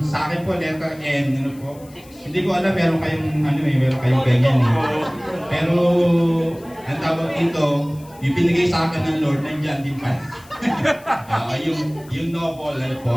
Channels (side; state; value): left; noise; hiss, 25 dB below the sound